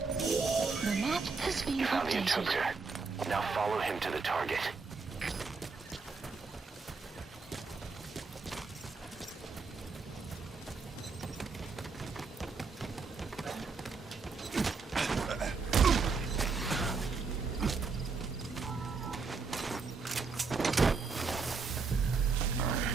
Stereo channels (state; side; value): quieter; left; 4.6 dB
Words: map has been You found the updated. interpreter. Now follow him to the target.